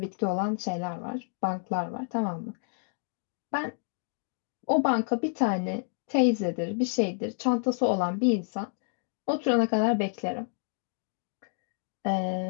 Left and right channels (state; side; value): silent; right; 58 dB below the other